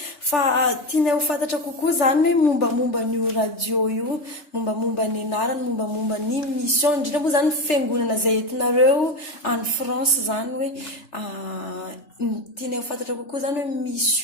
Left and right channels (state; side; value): late; right; 3.3 ms